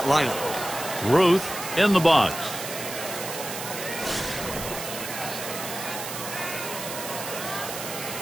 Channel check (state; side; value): noise; right; hiss, 7 dB below the sound